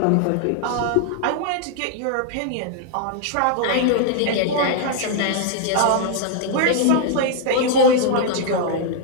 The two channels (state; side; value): different; both; correlation 0.00